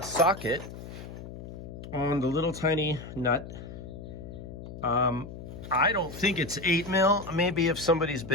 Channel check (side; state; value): left; noise; hum, 12 dB below the sound